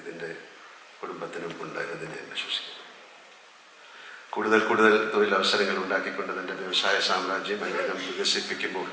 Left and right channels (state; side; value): identical; both; correlation 1.00